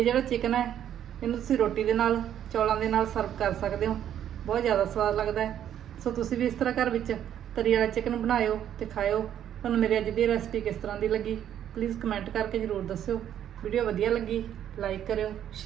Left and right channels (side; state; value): left; quieter; 10.3 dB